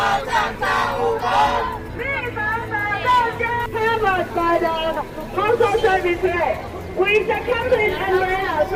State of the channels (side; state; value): both; identical; correlation 1.00